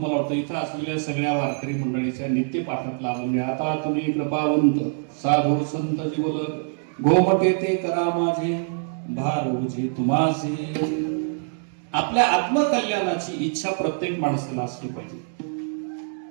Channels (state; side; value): silent; left; 60 dB below the other